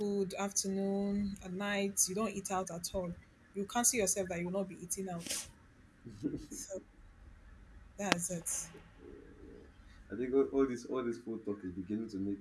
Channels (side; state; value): both; identical; correlation 1.00